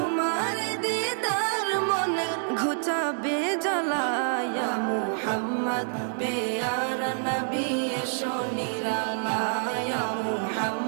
মনের ঘুচাবে জ্বালায় ইয়া মুহাম্মদ পেয়ারা নবী এসো নিরালায় ইয়া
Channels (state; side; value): silent; left; 60 dB below the other